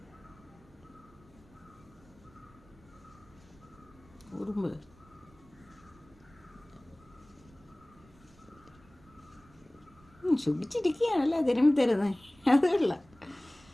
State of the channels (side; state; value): right; noise; rumble, 26 dB below the sound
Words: ഉറുമ്പ് സുഖിച്ചിരിക്കുകയാണല്ലേ തിരുമ്പി തരുന്നത്. അതല്ല